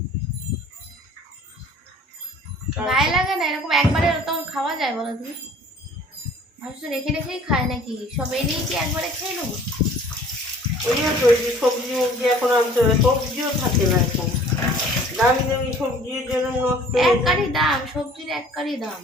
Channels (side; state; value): both; normal; correlation 0.51